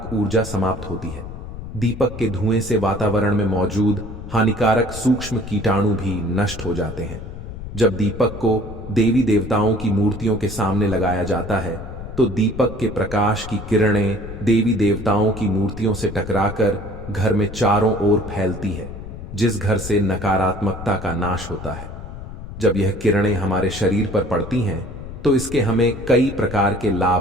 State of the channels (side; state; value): left; noise; rumble, 11 dB below the sound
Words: ऊर्जा समाप्त होती है। दीपक के धुएं से वातावरण में मौजूद हानिकारक सूक्ष्म कीटाणु भी नष्ट हो जाते हैं। जब दीपक को देवी देवताओं की मूर्तियों के सामने लगाया जाता है तो दीपक के प्रकाश की किरणें देवी देवताओं की मूर्तियों से टकराकर घर में चारों ओर फैलती है, जिस घर से नकारात्मकता का नाश होता है। जब यह किरणें हमारे शरीर पर पड़ती हैं तो इसके हमें कई प्रकार के